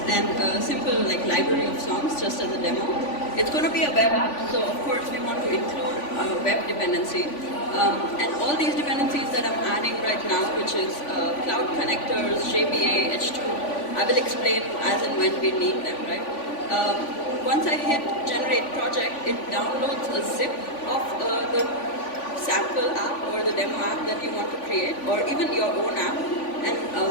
and a simple library of songs just as a demo. It's going to be a web app, so of course we want to include web dependency. And all these dependencies that I'm adding right now, which is cloud connectors, JPA, H2, I will explain as and when we need them, right? Once I hit generate project, it downloads a zip of the sample app or the demo app that you want to create, or even your own app. And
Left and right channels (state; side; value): late; right; 3.5 ms